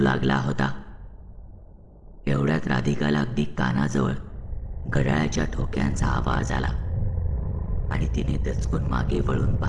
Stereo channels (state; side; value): identical; both; correlation 1.00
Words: होता. एवढ्यात राधिकाला अगदी कानाजवळ घड्याळाच्या ठोक्यांचा आवाज आला आणि तिने दचकून मागे वळून